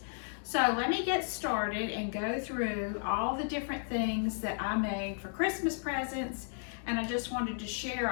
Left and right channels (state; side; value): silent; right; digital silence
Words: So let me get started and go through all the different things that I made for Christmas presents, and I just wanted to